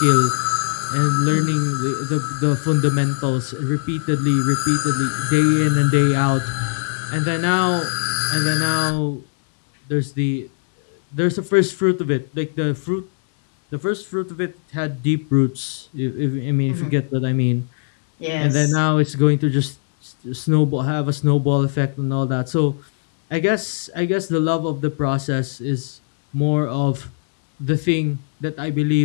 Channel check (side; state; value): right; silent; digital silence